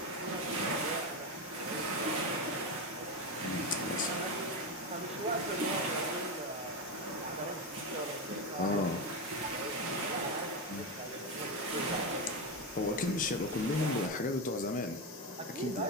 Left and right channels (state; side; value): normal; both; correlation 0.13